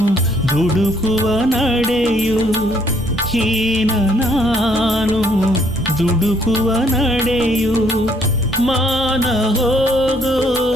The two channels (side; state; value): both; normal; correlation 0.67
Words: ದುಡುಕುವ ನಡೆಯು ಹೀನ ನಾನು ದುಡುಕುವ ನಡೆಯು ಮಾನ ಹೋಗೋ